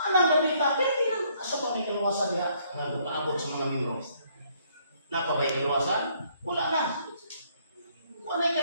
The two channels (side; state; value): both; inverted; correlation -0.67